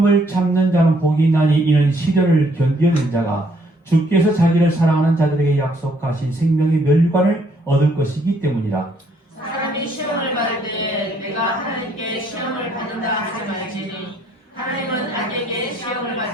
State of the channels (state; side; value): normal; both; correlation 0.67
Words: 참는 자는 복이 있나니 이는 시련을 견디는 자가 주께서 자기를 사랑하는 자들에게 약속하신 생명의 멸류관을 얻을 것이기 때문이라. 사람이 시험을 받을 때에 내가 하나님께 시험을 받는다 하지 말지니 하나님은 악에게 시험을